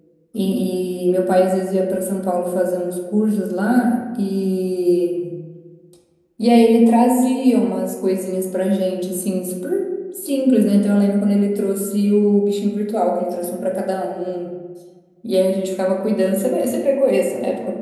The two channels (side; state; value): both; identical; correlation 1.00